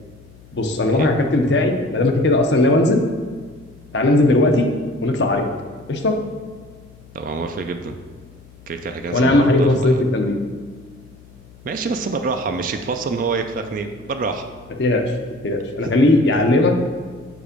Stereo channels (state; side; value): noise; left; hum, 24 dB below the sound